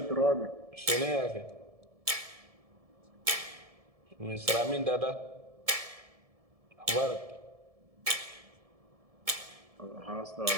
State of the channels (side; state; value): left; late; 1.7 ms